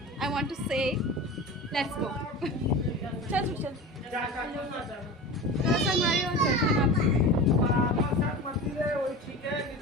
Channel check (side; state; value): both; normal; correlation 0.31